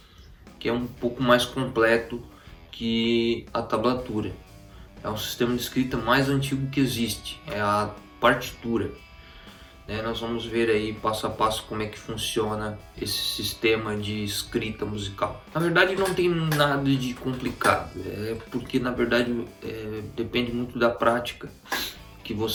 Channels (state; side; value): identical; both; correlation 1.00